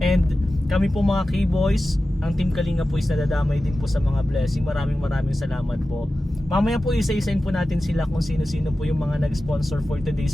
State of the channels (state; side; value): normal; both; correlation 0.94